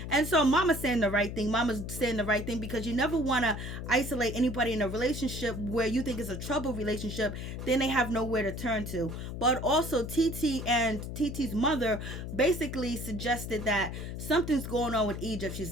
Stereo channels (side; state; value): left; noise; hum, 7 dB below the sound